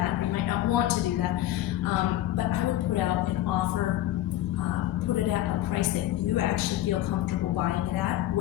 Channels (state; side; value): quieter; right; 13.9 dB